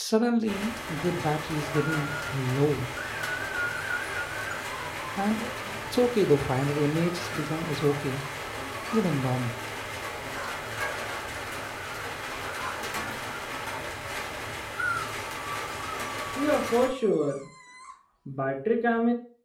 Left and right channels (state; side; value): identical; both; correlation 1.00